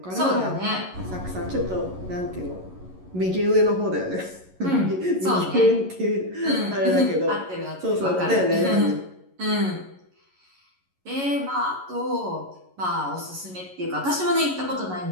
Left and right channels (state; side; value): late; left; 11 ms